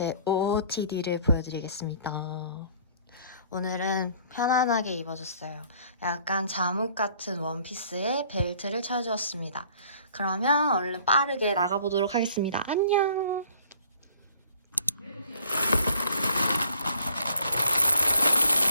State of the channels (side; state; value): both; inverted; correlation -0.57